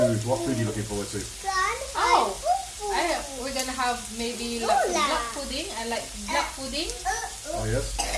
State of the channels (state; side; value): identical; both; correlation 1.00